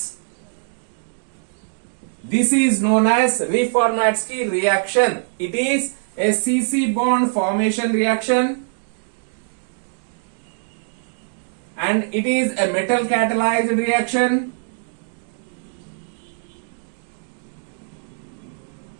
This is known as Reformatsky reaction. It is a CC bond formation reaction and it is a metal catalyzed reaction.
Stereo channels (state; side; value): silent; left; digital silence